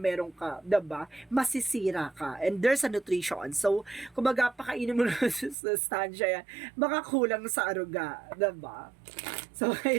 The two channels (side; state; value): left; drops out; at 5.6 s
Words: ka, diba? Masisira ka. And there's a nutrition. So, kumbaga, pakainin mo na sa sustansya yan, baka kulang sa aruga, diba? So,